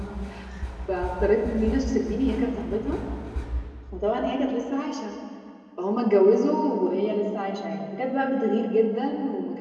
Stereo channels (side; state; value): both; identical; correlation 1.00